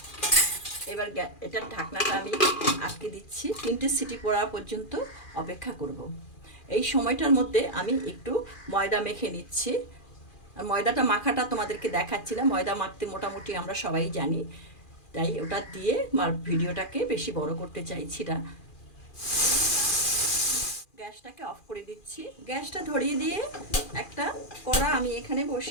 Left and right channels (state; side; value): late; right; 2.4 ms